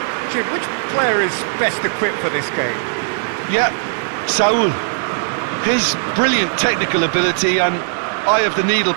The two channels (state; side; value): silent; left; digital silence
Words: Jim, which player is best equipped for this game? Yeah, Saul. His brilliant technical ability and eye of the needle